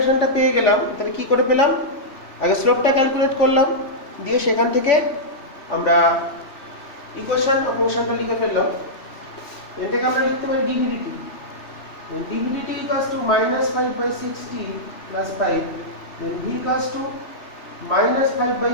পেয়ে গেলাম, তাহলে কি করে পেলাম? আগে স্লোপটা ক্যালকুলেট করলাম, দিয়ে সেখান থেকে আমরা ইকুয়েশন অফ মোশনটা লিখে ফেললাম। এটাকে আমরা লিখতে পারি dvdt, dvdt equals to minus 5/6t plus 5, then v equals to minus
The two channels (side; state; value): right; late; 3.5 ms